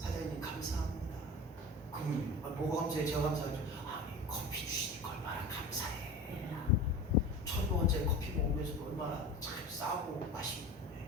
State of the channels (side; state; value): both; normal; correlation 0.34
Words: 감사합니다. 그러면 뭐가 감사해? 제가 감사하죠. 커피 주시니까 얼마나 감사해. 1,000원짜리 커피 먹으면서 얼마나 참 싸고 맛있고